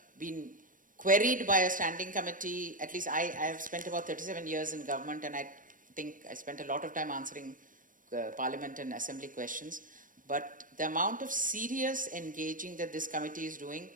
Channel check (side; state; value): left; late; 0.39 ms